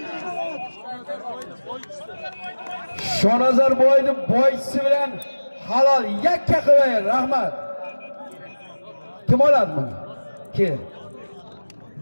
Shonazar boyning boychisi bilan halol yakka qilay, rahmat. Kim oladi buni? Kel.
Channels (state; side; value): inverted; both; correlation -1.00